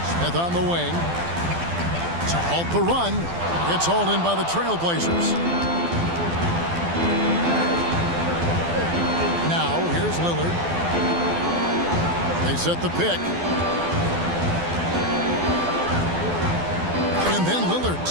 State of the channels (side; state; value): left; late; 12 ms